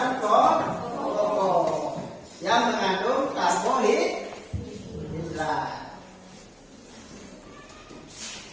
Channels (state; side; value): identical; both; correlation 1.00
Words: pokok yang mengandung karbohidrat.